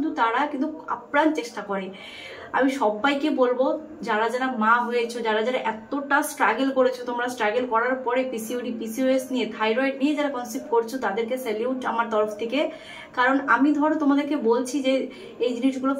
তারা কিন্তু আপ্রাণ চেষ্টা করে। আমি সবাইকে বলবো, যারা যারা মা হয়েছো, যারা যারা এতটা স্ট্রাগল করেছো, তোমরা স্ট্রাগল করার পরে পিসিওডি, পিসিওএস নিয়ে, থাইরয়েড নিয়ে যারা কনসেপ্ট করছো, তাদেরকে স্যালিউট আমার তরফ থেকে। কারণ আমি ধরো তোমাদেরকে বলছি যে এই জিনিসগুলো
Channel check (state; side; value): identical; both; correlation 1.00